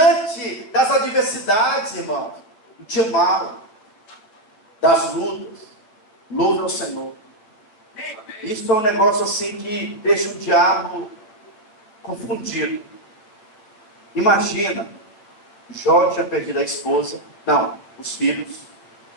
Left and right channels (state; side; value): late; right; 9.2 ms